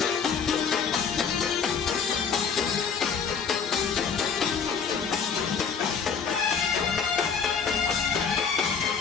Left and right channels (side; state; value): right; quieter; 6.3 dB